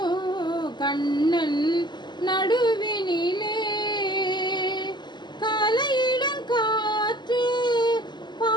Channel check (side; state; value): right; late; 0.21 ms